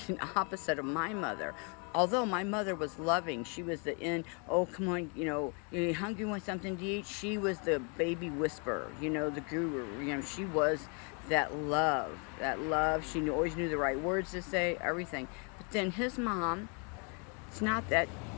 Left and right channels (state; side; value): quieter; right; 35.8 dB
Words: opposite of my mother. Although my mother was loving, she was oh, come on, you hungry, want something to eat? She was the baby whisperer, the guru. She was that love. She always knew the right words to say, everything. But then his mom, it's not that